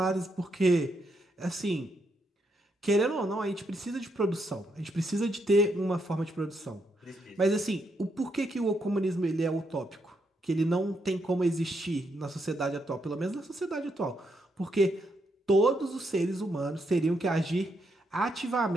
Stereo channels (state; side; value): normal; both; correlation 0.78